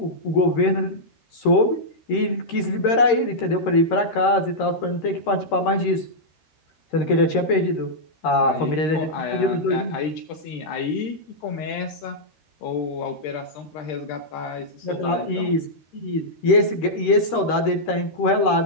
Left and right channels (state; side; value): late; right; 13 ms